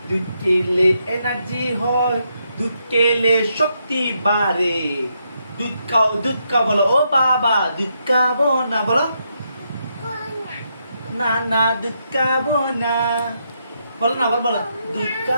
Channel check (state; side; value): inverted; both; correlation -0.79